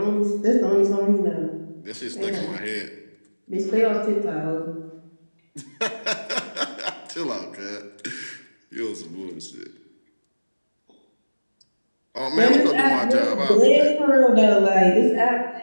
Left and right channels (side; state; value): both; inverted; correlation -1.00